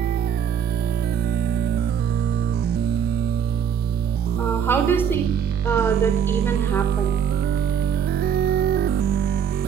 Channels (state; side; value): quieter; left; 8.0 dB